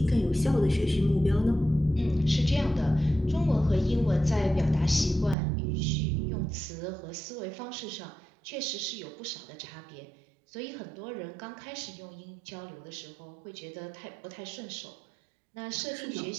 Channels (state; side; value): drops out; left; at 5.4 s